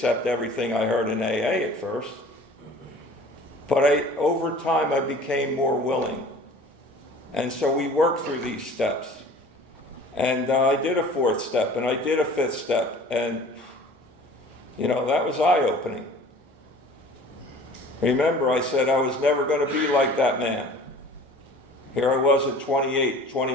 everything I heard in AA at first. But over time, I became more willing. And so we worked through these steps. And I did a fourth step, and I did a fifth step. And, you know, that was eye-opening. Remember, I said I was never going to be like that man. Here I was at 28,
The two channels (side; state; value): both; normal; correlation 0.46